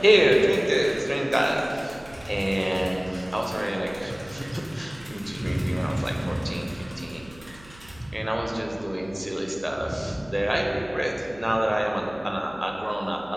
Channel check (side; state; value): right; noise; hum, 23 dB below the sound